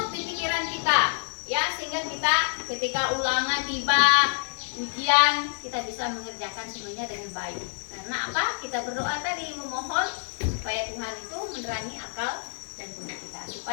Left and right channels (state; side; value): silent; right; digital silence